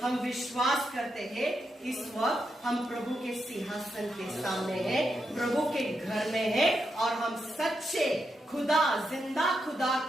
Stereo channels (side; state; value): both; normal; correlation 0.84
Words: हम विश्वास करते हैं इस वक्त हम प्रभु के सिंहासन के सामने हैं, प्रभु के घर में हैं और हम सच्चे खुदा, जिंदा खुदा